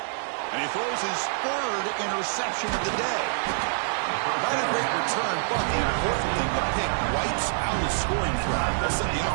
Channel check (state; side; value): silent; left; digital silence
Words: And he throws his third interception of the day. Not a great return, but the important thing, the pick wipes out his scoring threat. They'll set the